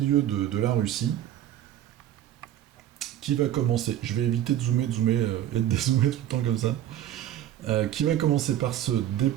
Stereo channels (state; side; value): quieter; left; 11.9 dB